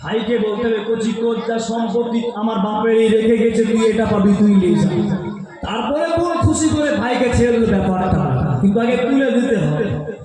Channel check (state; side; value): identical; both; correlation 1.00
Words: বলতে হবে, কচি তোর যা সম্পত্তি আমার বাপের এই রেখে গেছে, তুই এটা পাবি, তুই নিয়ে যা। তারপরে বোন খুশি করে ভাইকে ছেড়ে দিল ব্যাপারটা, কিন্তু আগে তুলে দিতে হবে।